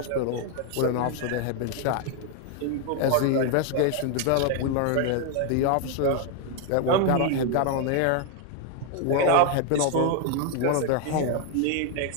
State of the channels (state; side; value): different; both; correlation 0.00